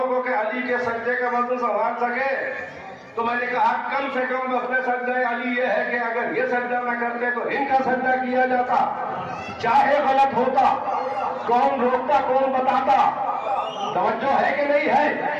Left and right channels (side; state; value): both; identical; correlation 1.00